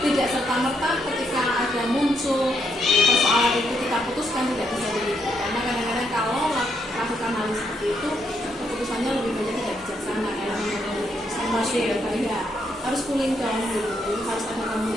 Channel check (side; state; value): both; normal; correlation 0.76